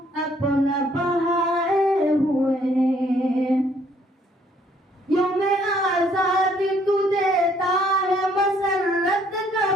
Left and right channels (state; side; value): normal; both; correlation 0.65